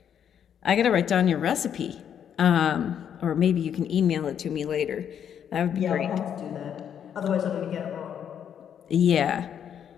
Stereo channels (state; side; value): quieter; right; 8.8 dB